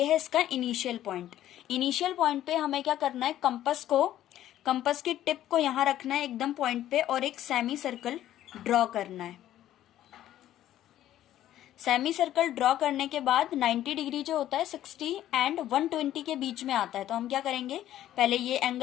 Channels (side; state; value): right; quieter; 12.6 dB